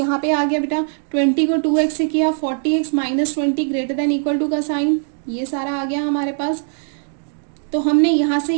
पे आ गया बेटा, 20 को 2x से किया, 40x minus 20 greater than equal to का साइन, ये सारा आ गया हमारे पास। तो हमने यहाँ से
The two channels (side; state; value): left; silent; 62 dB below the other